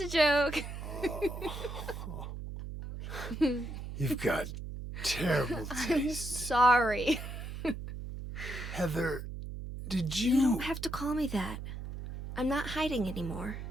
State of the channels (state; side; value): noise; right; hum, 8 dB below the sound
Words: a joke. You've got terrible I'm taste. sorry. Heather, did You don't have to call me that. I'm not hiding anymore.